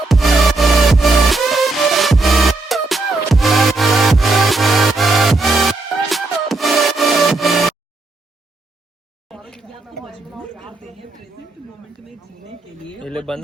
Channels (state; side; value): quieter; left; 3.2 dB